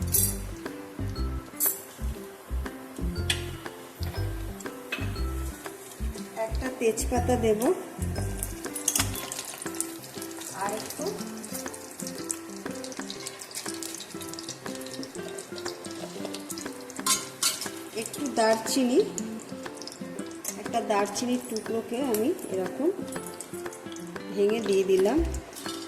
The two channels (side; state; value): both; identical; correlation 1.00